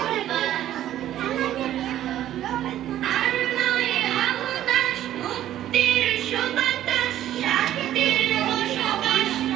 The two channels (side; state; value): left; quieter; 12.4 dB